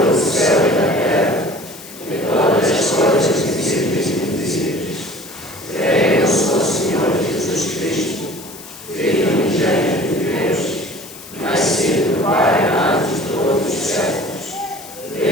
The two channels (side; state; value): left; noise; hiss, 16 dB below the sound